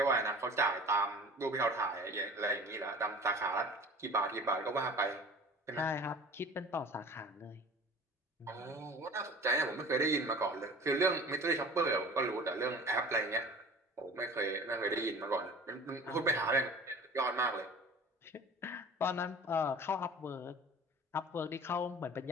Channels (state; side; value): normal; both; correlation 0.43